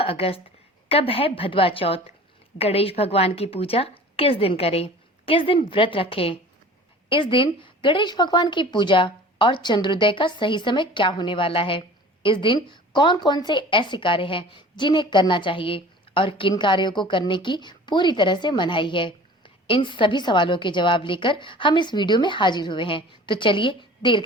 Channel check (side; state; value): both; normal; correlation 0.43